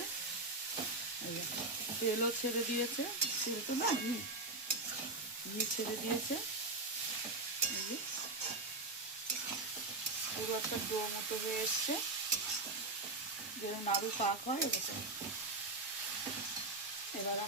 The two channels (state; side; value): quieter; left; 3.1 dB